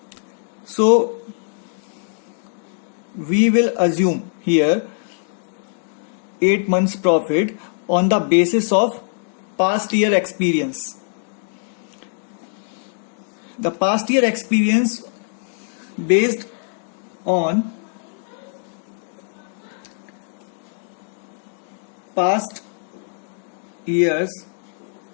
So we will assume here 8 months profit on the basis of past year experience. The past year experience based on past years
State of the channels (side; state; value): right; silent; digital silence